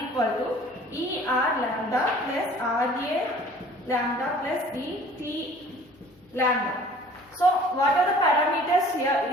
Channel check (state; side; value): normal; both; correlation 0.50